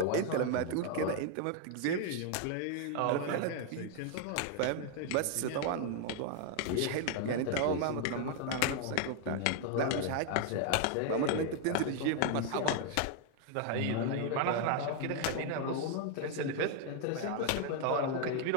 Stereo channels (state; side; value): different; both; correlation 0.00